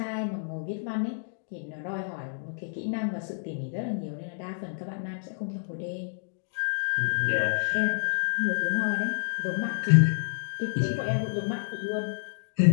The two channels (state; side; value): silent; right; digital silence